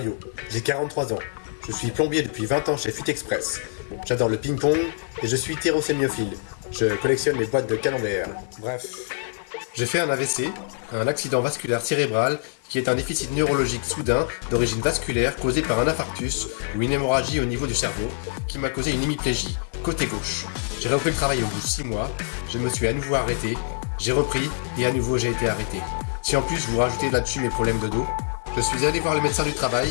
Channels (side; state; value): right; silent; digital silence